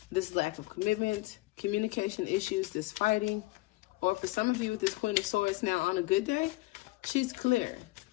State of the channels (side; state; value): right; quieter; 20.6 dB